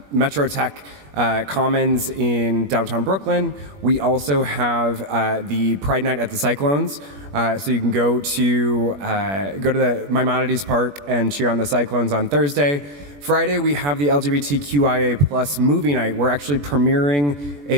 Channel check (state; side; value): late; left; 21 ms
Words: Metro Tech Commons in downtown Brooklyn. We also have the Pride Night at the Cyclones. So you can go to the Maimonides Park and cheer on the Cyclones on Thursday. Friday, we have the LGBTQIA plus movie night. We're actually premiering